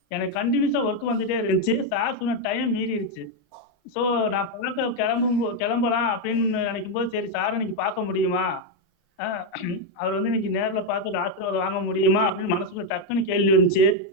எனக்கு கண்டினியூஸாக ஒர்க் வந்துட்டே இருந்துச்சு. சார் சொன்ன டைம் மீறிடுச்சு. ஸோ நான் பார்க்க கிளம்பலாம் அப்படின்னு நினைக்கும் போது, சரி சார் இன்னைக்கு பார்க்க முடியுமா, அவர் வந்து இன்னைக்கு நேரில் பார்த்து ஆசீர்வாதம் வாங்க முடியுமா அப்படின்னு மனசுக்குள்ள டக்குன்னு கேள்வி இருந்துச்சு.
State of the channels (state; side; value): normal; both; correlation 0.03